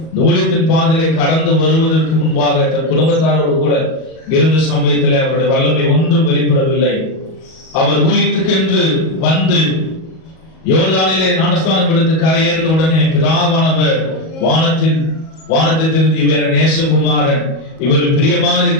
ஊழியத்தின் பாதையை கடந்து வருவதற்கு முன்பாக தன் குடும்பத்தாரோடு கூட இருந்த சமயத்தில் அவருடைய வல்லமை ஒன்றும் வெளிப்படவில்லை. அவர் ஊழியத்துக்கென்று வந்து யோர்தானிலே ஞானஸ்நானம் எடுத்து கரையேறின உடனே பிதாவானவர் வானத்தை திறந்து இவர் நேசகுமாரன், இவர் பிரியமா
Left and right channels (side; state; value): right; late; 37 ms